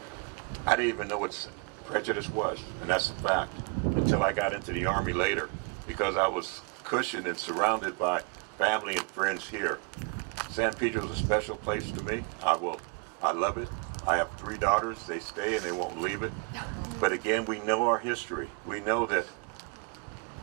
I didn't even know what prejudice was, and that's a fact, until I got into the Army later, because I was cushioned and surrounded by family and friends here. San Pedro is a special place to me. I love it. I have 3 daughters. They stay and they won't leave it. But again, we know our history. We know that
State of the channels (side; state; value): left; quieter; 32.7 dB